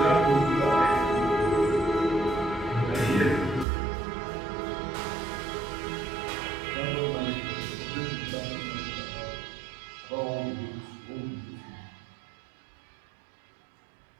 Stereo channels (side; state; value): left; drops out; at 3.7 s